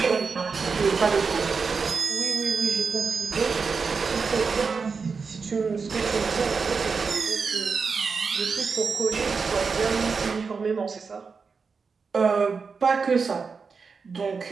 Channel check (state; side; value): quieter; left; 5.1 dB